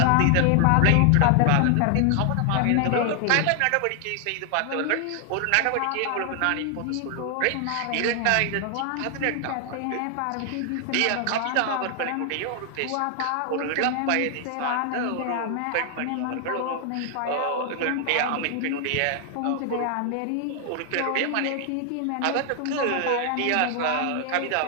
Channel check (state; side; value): different; both; correlation 0.00